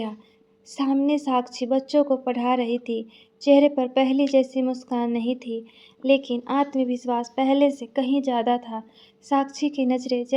सामने साक्षी बच्चों को पढ़ा रही थी। चेहरे पर पहले जैसी मुस्कान नहीं थी, लेकिन आत्मविश्वास पहले से कहीं ज़्यादा था। साक्षी की नज़रें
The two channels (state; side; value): identical; both; correlation 1.00